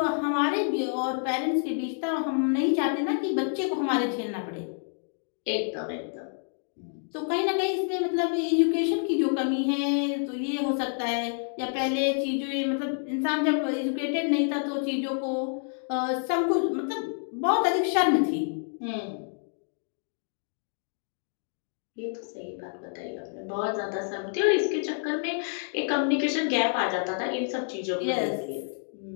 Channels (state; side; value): silent; right; 59 dB below the other